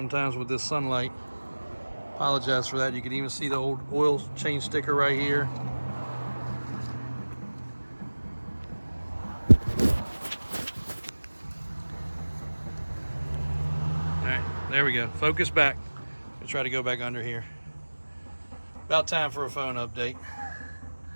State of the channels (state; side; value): inverted; both; correlation -1.00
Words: with this sunlight. Apologize for that. You can even see the old oil change sticker right here. Alright, there we go. Focus back. I'll try to go back under here. About time for a phone update.